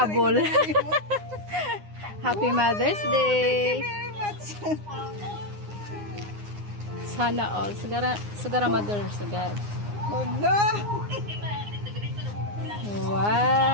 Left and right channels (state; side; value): late; left; 9.7 ms